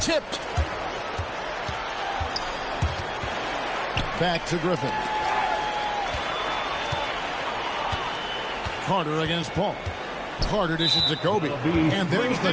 tipped. Back to Griffin. Carter against Paul. Carter dishes to Kobe. And there's the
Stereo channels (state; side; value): identical; both; correlation 1.00